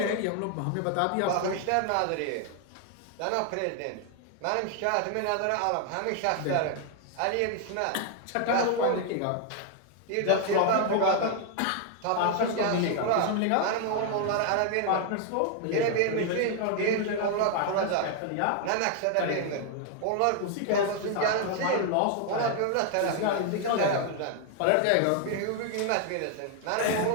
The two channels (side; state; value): both; different; correlation 0.00